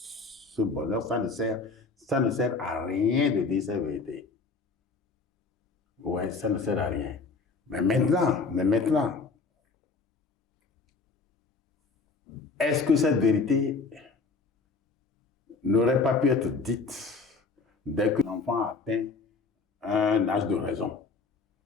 bonheur, ça ne sert à rien de dire cette vérité. Ouais, ça ne sert à rien. Mais maintenant, est-ce que cette vérité n'aurait pas pu être dite dès que l'enfant atteint un âge de raison?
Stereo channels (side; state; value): right; quieter; 4.3 dB